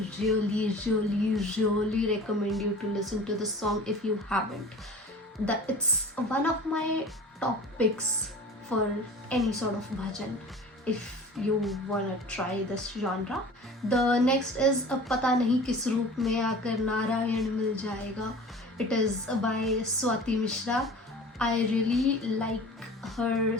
really recommend you to listen to the song if you haven't. It's one of my top picks for any sort of bhajan if you wanna try this genre. The next is पता नहीं किस रूप में आकर नारायण मिल जाएगा. It is by Swati Mishra. I really like her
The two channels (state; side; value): normal; both; correlation 0.41